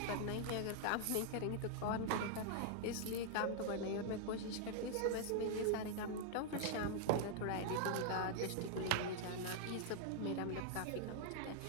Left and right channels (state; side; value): different; both; correlation 0.00